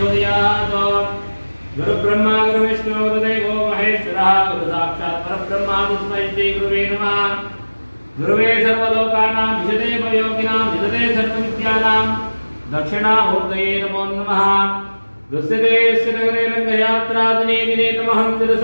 गुरुब्रह्मा गुरुविष्णु गुरुदेवो महेश्वरः गुरुसाक्षात् परब्रह्म तस्मै श्री गुरुवे नमः गुरुवे सर्वलोकानां विशदे भवयोगिनां विशदे सर्वविद्यानां दक्षिणामूर्तये नमो नमः दुस्सिते नगरे रङ्गयात्रादिने दिने तमहं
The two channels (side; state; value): both; inverted; correlation -1.00